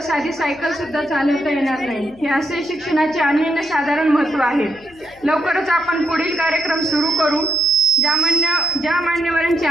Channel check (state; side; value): noise; left; hum, 26 dB below the sound